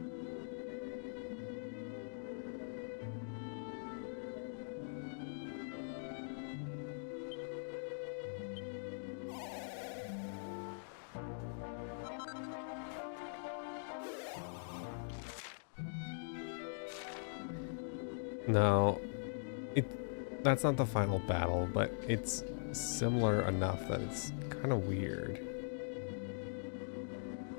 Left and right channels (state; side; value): silent; right; digital silence